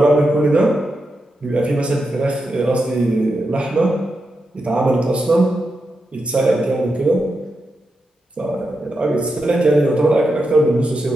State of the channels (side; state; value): both; normal; correlation 0.87